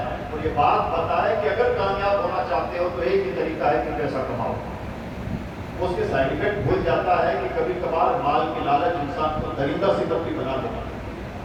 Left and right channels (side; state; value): both; identical; correlation 1.00